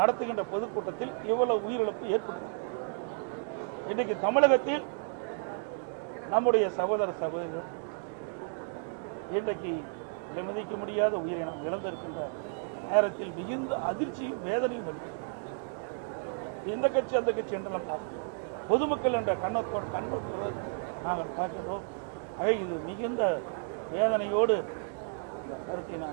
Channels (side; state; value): left; silent; 56 dB below the other